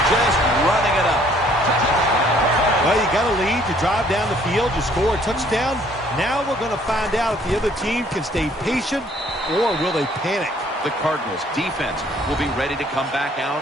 just running it up. Well, you got a lead. You drive down the field. You score a touchdown. Now we're going to find out if the other team can stay patient or will they panic. The Cardinals defense will be ready to come back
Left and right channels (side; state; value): both; normal; correlation 0.61